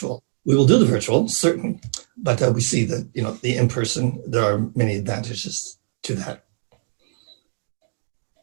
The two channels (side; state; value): left; silent; 64 dB below the other